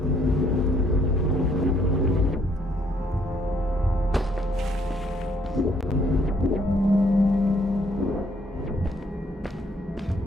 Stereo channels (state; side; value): normal; both; correlation 0.67